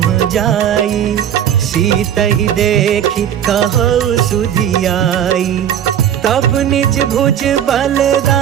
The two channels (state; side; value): quieter; left; 9.9 dB